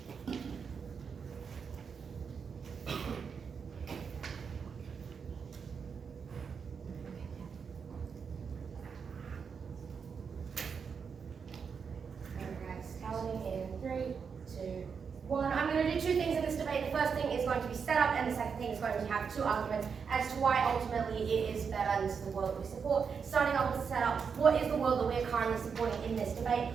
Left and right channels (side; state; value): left; quieter; 6.2 dB